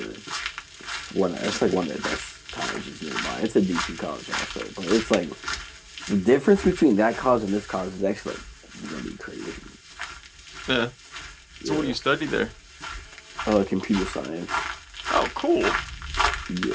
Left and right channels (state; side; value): identical; both; correlation 1.00